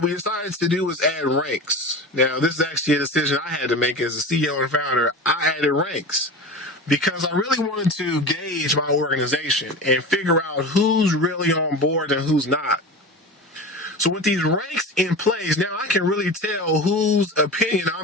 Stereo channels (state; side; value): normal; both; correlation 0.30